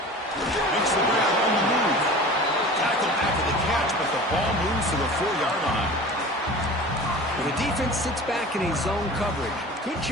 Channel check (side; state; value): both; normal; correlation 0.38